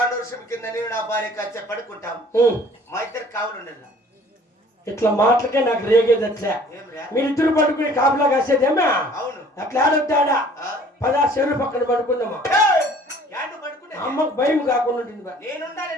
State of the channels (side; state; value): both; normal; correlation 0.53